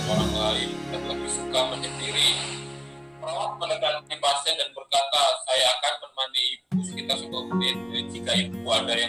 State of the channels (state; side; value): identical; both; correlation 1.00